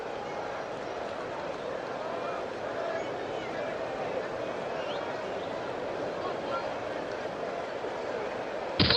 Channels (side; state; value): both; identical; correlation 1.00